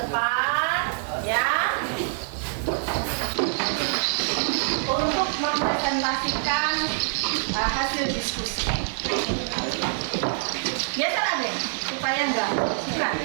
ya. Untuk mempresentasikan hasil diskusi. Biasa deh, supaya enggak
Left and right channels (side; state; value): left; silent; digital silence